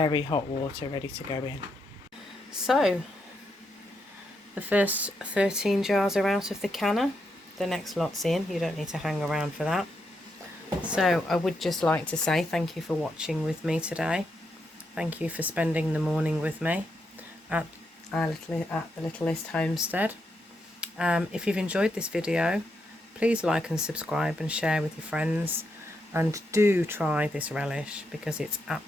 hot water, ready to go in. So the first 13 jars are out of the canner. The next lot's in. You don't need to hang around for that. So I would just like to say thank you for watching with me today. Thank you for spending the morning with me at the Littlest Homestead. If you've enjoyed this video, please like and subscribe and share with your friends, and do try this relish because it's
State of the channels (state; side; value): normal; both; correlation 0.81